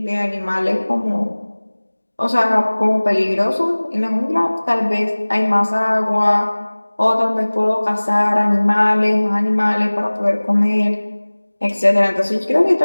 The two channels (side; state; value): both; inverted; correlation -1.00